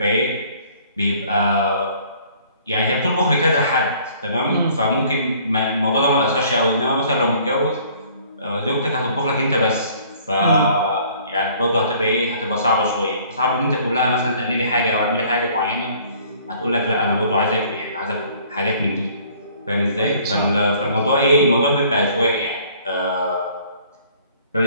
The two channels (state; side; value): inverted; both; correlation -0.56